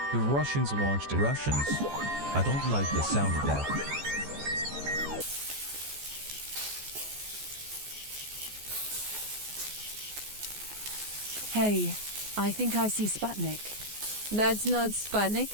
the Russians launched it. Russians? I don't like the sound of that. Hey, I think I see Sputnik. That's not Sputnik.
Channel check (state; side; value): late; left; 14 ms